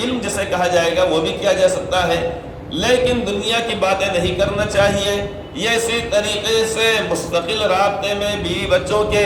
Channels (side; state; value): both; identical; correlation 1.00